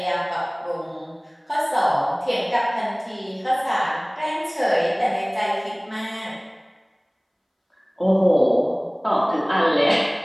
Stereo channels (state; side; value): identical; both; correlation 1.00